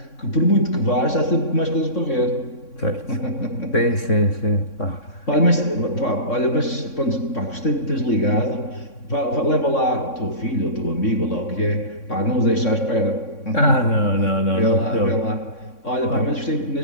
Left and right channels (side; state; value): right; late; 3.6 ms